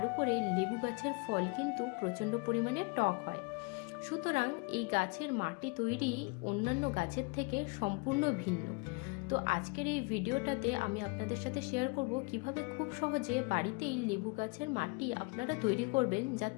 উপরে লেবু গাছের ফল কিন্তু প্রচণ্ড পরিমাণে টক হয়। সুতরাং এই গাছের মাটি তৈরি অন্যান্য গাছের থেকে সম্পূর্ণ ভিন্ন। তো আজকের এই ভিডিওটাতে আমি আপনাদের সাথে শেয়ার করব কিভাবে খুব সহজে বাড়িতেই লেবু গাছের মাটি আপনারা তৈরি করবেন,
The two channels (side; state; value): right; quieter; 28.7 dB